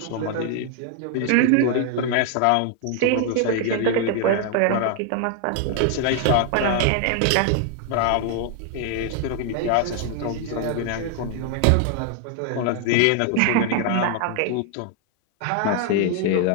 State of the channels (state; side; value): different; both; correlation 0.00